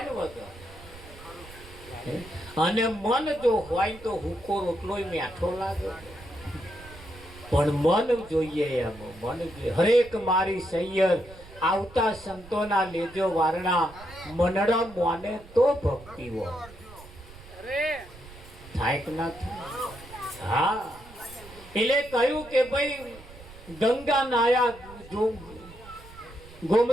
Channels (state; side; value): noise; right; rumble, 19 dB below the sound